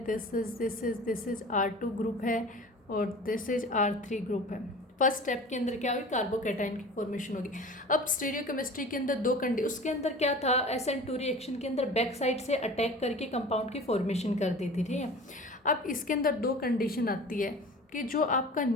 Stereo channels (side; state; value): both; normal; correlation 0.39